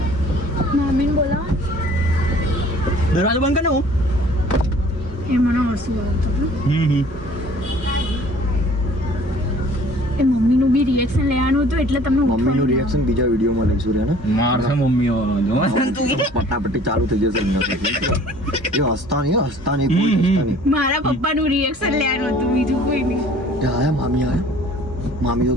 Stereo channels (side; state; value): both; normal; correlation 0.52